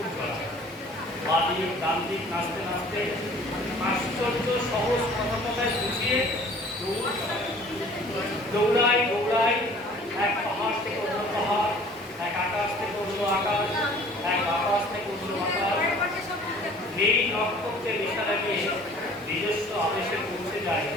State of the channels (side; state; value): both; normal; correlation 0.50